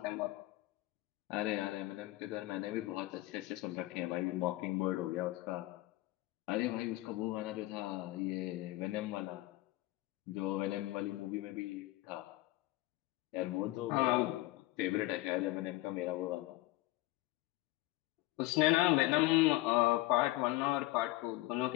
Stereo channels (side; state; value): right; quieter; 18.7 dB